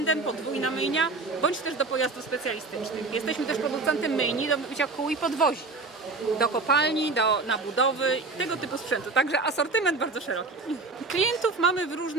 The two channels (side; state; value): left; quieter; 3.8 dB